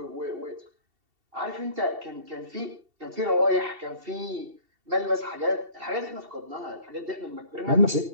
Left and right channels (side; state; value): left; late; 2.7 ms